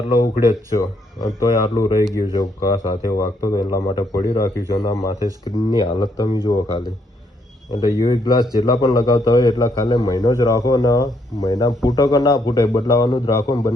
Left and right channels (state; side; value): normal; both; correlation 0.73